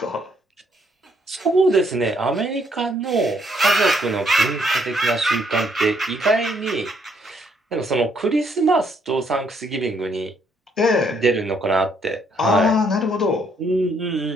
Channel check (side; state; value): both; normal; correlation 0.70